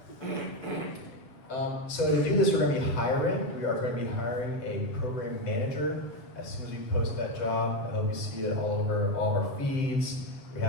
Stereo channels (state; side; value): late; right; 7.2 ms